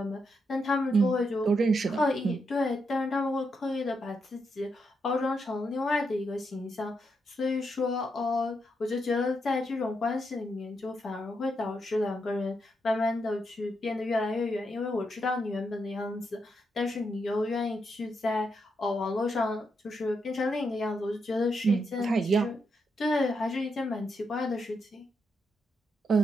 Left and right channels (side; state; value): both; normal; correlation 0.81